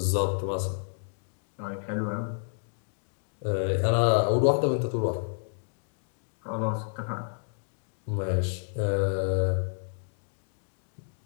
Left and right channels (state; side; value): silent; right; digital silence